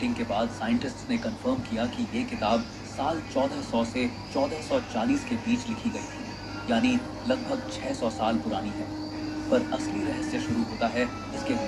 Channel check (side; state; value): both; identical; correlation 1.00